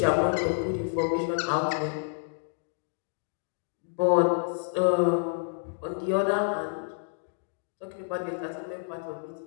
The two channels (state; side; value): silent; right; digital silence